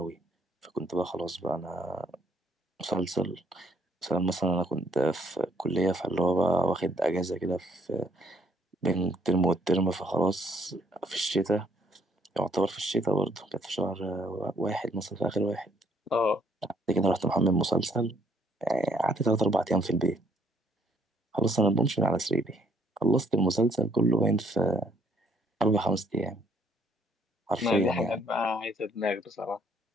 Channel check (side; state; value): both; normal; correlation 0.66